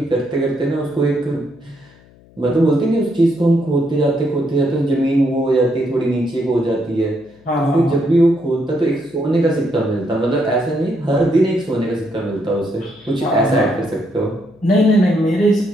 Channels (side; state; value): left; noise; hum, 27 dB below the sound